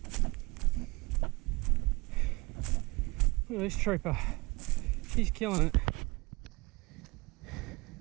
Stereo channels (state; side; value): quieter; left; 24.5 dB